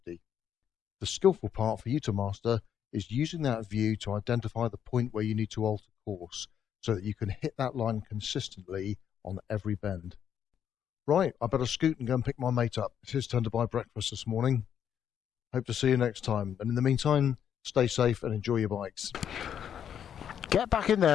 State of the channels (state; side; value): quieter; right; 8.9 dB